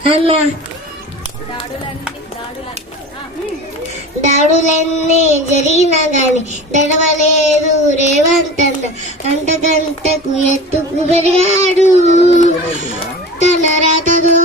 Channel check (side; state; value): both; normal; correlation 0.34